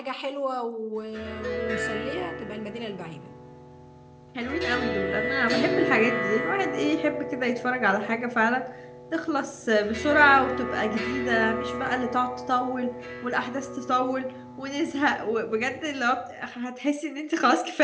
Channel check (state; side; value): identical; both; correlation 1.00